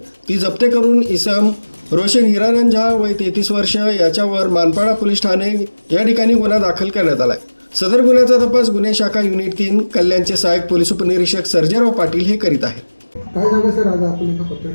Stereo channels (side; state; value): both; inverted; correlation -1.00